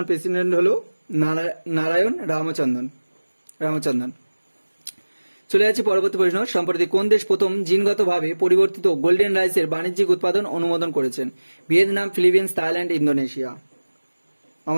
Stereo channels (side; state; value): both; inverted; correlation -1.00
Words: প্রেসিডেন্ট হলো নারায়ণ রামচন্দ্রন। চলে যাচ্ছি পরবর্তী প্রশ্ন, সম্প্রতি কোন দেশ প্রথম জিনগতভাবে পরিবর্তিত গোল্ডেন রাইসের বাণিজ্যিক উৎপাদন অনুমোদন করেছেন? Vietnam, Philippines, Thailand, Indonesia.